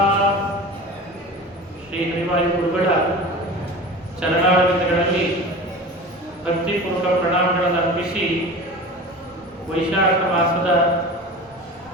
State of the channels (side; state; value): both; normal; correlation 0.34